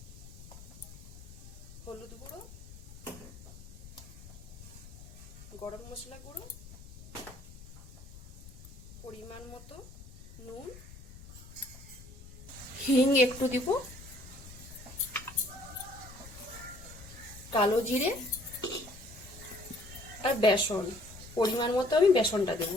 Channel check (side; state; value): left; noise; rumble, 16 dB below the sound